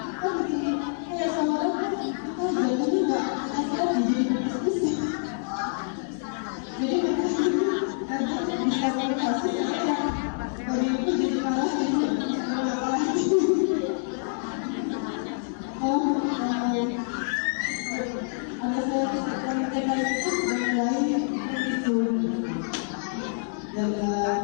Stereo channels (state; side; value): silent; right; digital silence